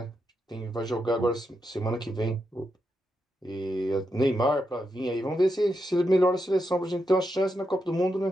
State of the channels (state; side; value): normal; both; correlation 0.85